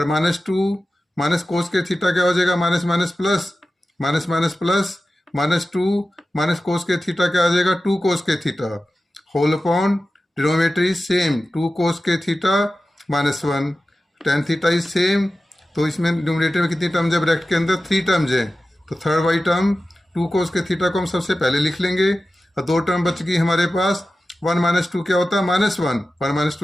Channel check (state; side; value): normal; both; correlation 0.94